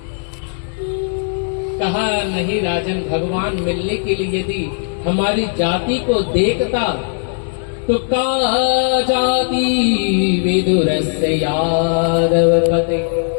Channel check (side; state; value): right; silent; digital silence